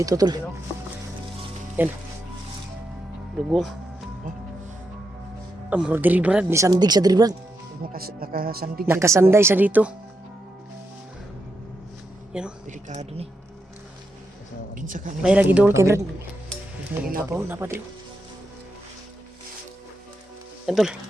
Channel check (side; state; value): both; normal; correlation 0.84